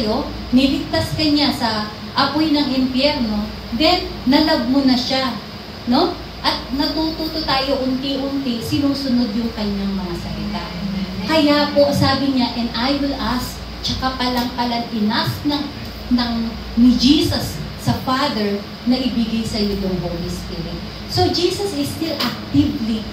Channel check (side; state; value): both; identical; correlation 1.00